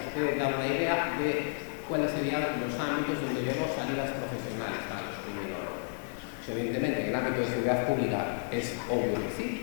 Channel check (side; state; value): right; silent; 57 dB below the other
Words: puede dar una idea de cuáles serían los ámbitos donde vemos salidas profesionales para los criminólogos, ¿no? Pues evidentemente, en el ámbito de seguridad pública es obvio que sí,